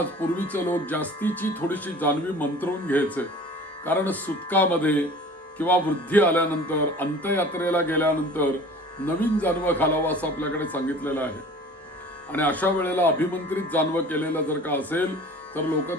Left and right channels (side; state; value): both; normal; correlation 0.44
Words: पूर्वीचे लोक जास्तीची थोडीशी जानवी मंत्रवून घ्यायचे, कारण सुतकामध्ये किंवा वृद्धी आल्यानंतर, अंत्ययात्रेला गेल्यानंतर नवीन जानवं घालावं असं आपल्याकडे सांगितलेलं आहे. आणि अशा वेळेला अभिमंत्रित जानवं केलेलं जर का असेल तर लोक